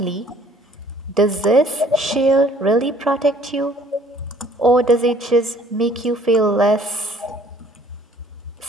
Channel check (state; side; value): normal; both; correlation 0.58